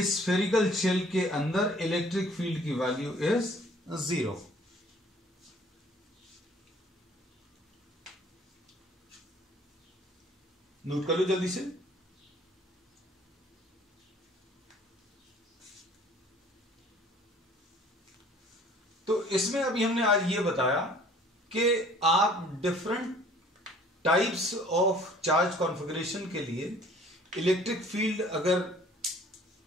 स्फेरिकल शेल के अंदर इलेक्ट्रिक फील्ड की वैल्यू इज 0। नोट कर लो जल्दी से। तो इसमें अभी हमने आज ये बताया कि आप different types of charge configuration के लिए इलेक्ट्रिक फील्ड अगर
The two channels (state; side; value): normal; both; correlation 0.53